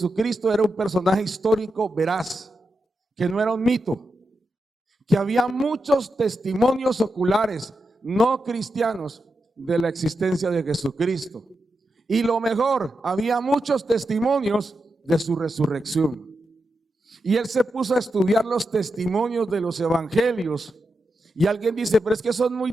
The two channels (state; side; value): normal; both; correlation 0.88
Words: era un personaje histórico veraz, que no era un mito, que había muchos testimonios oculares no cristianos de la existencia de Jesucristo. Y lo mejor, había muchos testimonios de su resurrección. Y él se puso a estudiar los testimonios de los evangelios. Y alguien dice, pero es que son muy